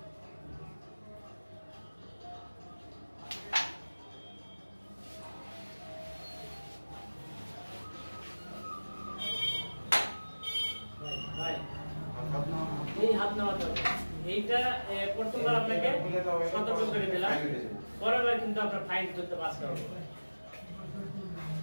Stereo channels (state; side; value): inverted; both; correlation -1.00